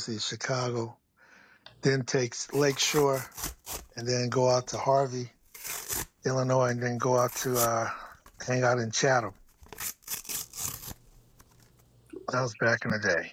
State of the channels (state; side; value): identical; both; correlation 1.00